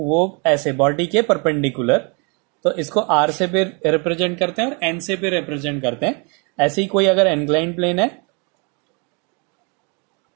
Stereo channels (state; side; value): quieter; left; 33.3 dB